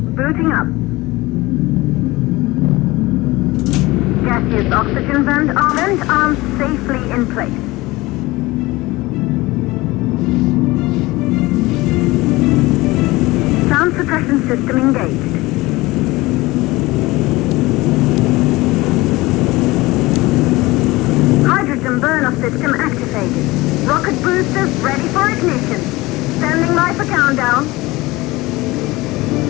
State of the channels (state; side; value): quieter; right; 20.5 dB